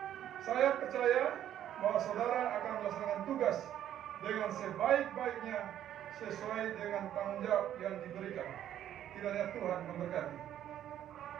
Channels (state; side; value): quieter; left; 11.1 dB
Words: Saya percaya bahwa saudara akan melaksanakan tugas dengan sebaik-baiknya sesuai dengan tanggung jawab yang diberikan. Kiranya Tuhan memberkati.